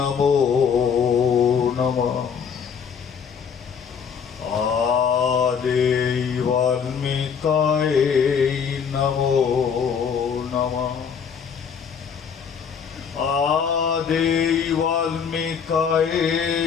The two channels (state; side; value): quieter; right; 6.8 dB